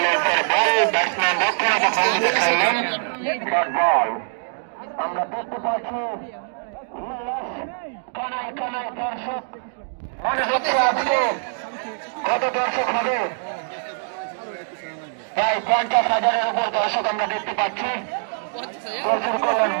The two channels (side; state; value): left; silent; digital silence